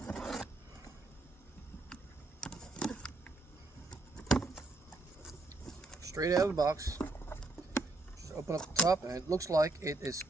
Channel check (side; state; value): left; quieter; 3.0 dB